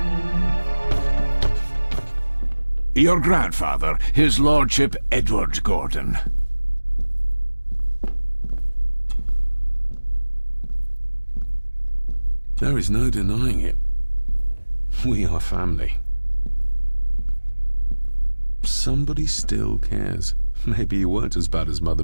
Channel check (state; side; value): inverted; both; correlation -1.00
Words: Your grandfather, his lordship Edward Gordon. There is no denying it. We are family. Somebody still cares. Maybe you weren't as bad as Mother